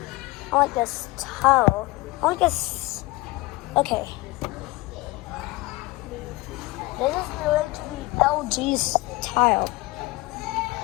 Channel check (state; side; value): quieter; right; 21.4 dB